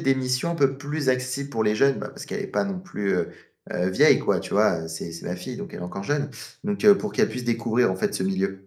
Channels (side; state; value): both; identical; correlation 1.00